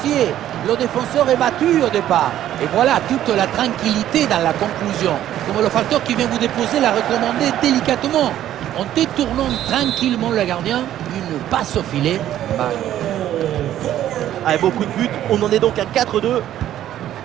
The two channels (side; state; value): left; quieter; 12.1 dB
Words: Le défenseur est battu au départ. Et voilà toute la tranquillité dans la conclusion. Comme le facteur qui vient vous déposer l'a recommandé délicatement. En détournant tranquillement le gardien, une passe au filet. Avec beaucoup de buts, on en est donc à 4-2.